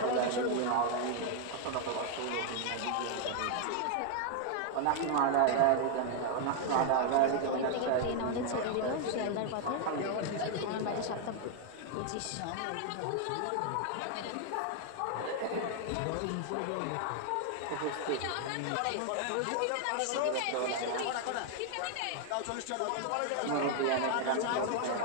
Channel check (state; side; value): different; both; correlation 0.00